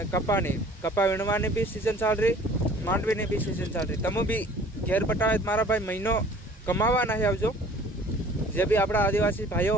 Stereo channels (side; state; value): both; normal; correlation 0.50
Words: कपा वीणवानी भी सीजन चाल रही मांडवीनी भी सीजन चाल रही तमु भी घेर बटावे मारा भाई महीनो कमावा नहीं आवजो जे भी अपना आदिवासी भाईओ